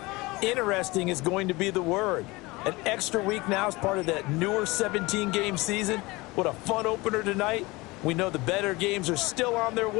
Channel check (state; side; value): quieter; right; 22.7 dB